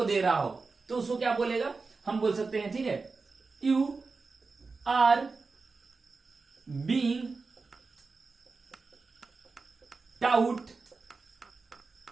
दे रहा हो, तो उसको क्या बोलेगा, हम बोल सकते हैं, ठीक है, you are being taught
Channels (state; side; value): quieter; left; 4.2 dB